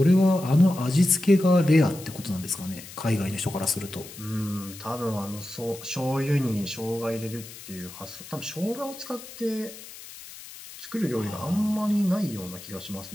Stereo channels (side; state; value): left; noise; hiss, 15 dB below the sound